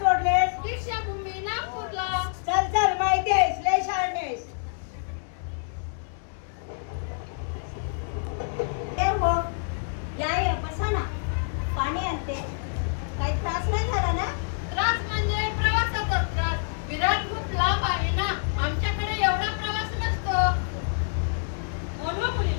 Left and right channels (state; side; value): silent; right; digital silence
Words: दीक्षाभूमी नागपूरला. चल माहिती आहेस लय शहाणी आहेस. हो या बसा ना. पाणी आणते. काही त्रास नाही झाला ना. त्रास म्हणजे प्रवासाचा त्रास. विरार खूप लांब आहे ना. आमच्याकडे एवढा प्रवास नसतो. बोलवा